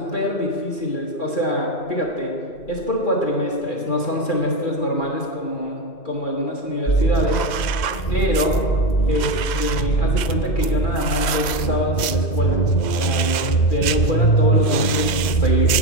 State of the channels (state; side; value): late; right; 2.1 ms